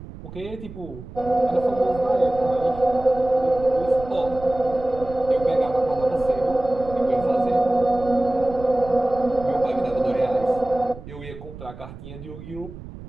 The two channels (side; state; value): right; noise; rumble, 14 dB below the sound